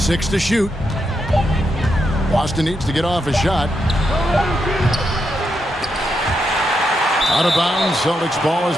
to shoot. Boston needs to get off a shot. Out of bounds. Celtics ball as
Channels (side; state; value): both; normal; correlation 0.83